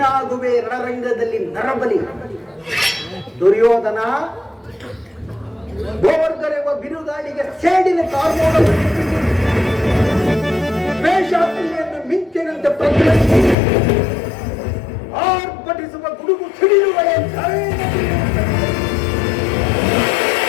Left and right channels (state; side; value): drops out; right; at 13.6 s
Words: ರಣರಂಗದಲ್ಲಿ ನರಬಲಿ. ದುರ್ಯೋಧನ, ಗೋವರ್ಧನೆವ ಬಿರುಗಾಳಿಗೆ ಸೇಡಿನ ಕಾರ್ಮೋಡ ವೇಷಾತಿಯನ್ನು ಮಿಂಚಿನಂತೆ ಪ್ರತಿನಿಧಿ ಆರ್ಭಟಿಸುವ ಗುಡುಗು ಸಿಡಿಯುವ